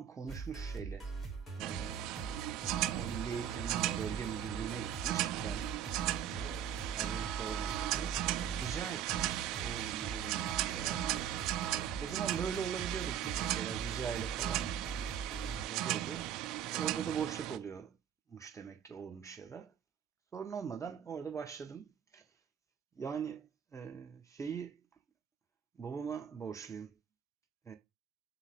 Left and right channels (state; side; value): quieter; left; 9.1 dB